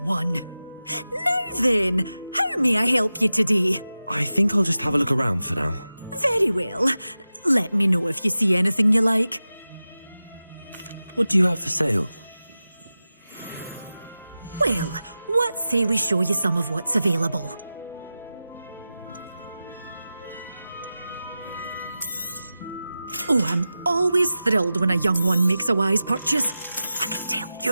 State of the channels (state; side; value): inverted; both; correlation -0.94